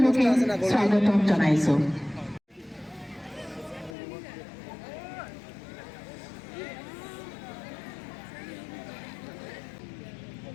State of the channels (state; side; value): drops out; right; at 4.0 s